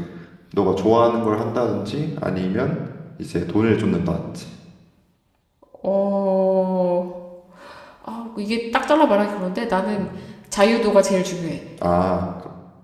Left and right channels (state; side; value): identical; both; correlation 1.00